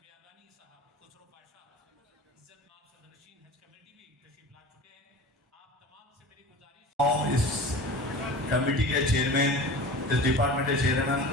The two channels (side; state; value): both; normal; correlation 0.36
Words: बियाबानी साहब खुसरो पाशा इज्जत माब सदरशीन हज कमेटी भी तशरीफ ला चुके हैं। आप तमाम से मेरी गुजारिश, इस कमेटी के चेयरमैन, इस डिपार्टमेंट के चेयरमैन